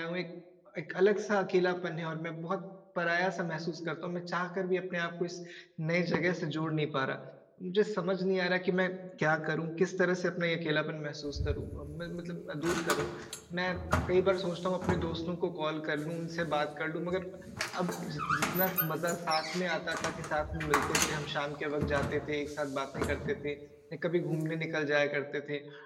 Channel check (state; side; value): identical; both; correlation 1.00